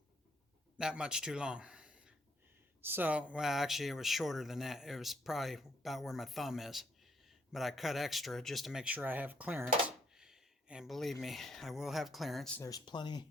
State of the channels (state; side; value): normal; both; correlation 0.70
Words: that much too long. So, well, actually, it was shorter than that. It was probably about where my thumb is. But I cut extra just to make sure I have clearance. And believe me, I will have clearance. There's plenty.